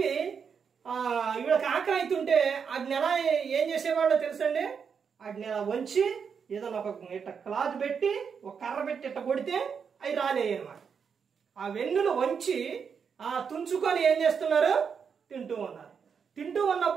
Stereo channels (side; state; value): left; quieter; 6.5 dB